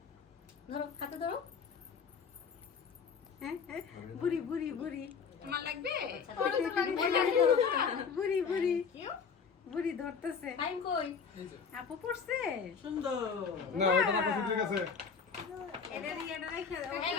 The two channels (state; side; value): quieter; right; 6.0 dB